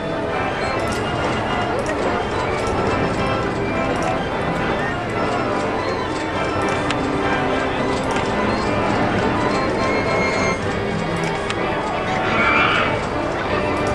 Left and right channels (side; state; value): both; identical; correlation 1.00